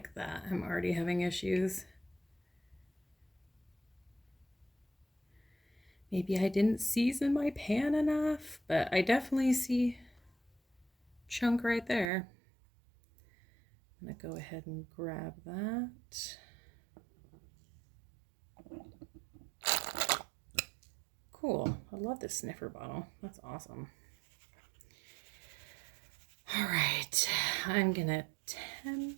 that. I'm already having issues. Maybe I didn't season my pan enough, but I definitely see chunk right there. I'm gonna go ahead and grab that. Cool. I love this sniffer bottle. That's awesome. All right, I'm gonna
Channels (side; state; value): left; drops out; at 12.1 s